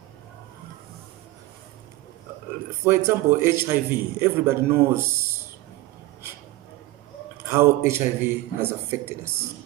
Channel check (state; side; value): quieter; left; 18.4 dB